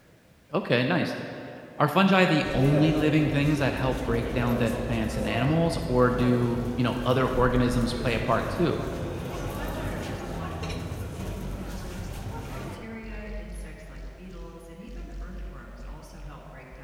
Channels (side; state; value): both; identical; correlation 1.00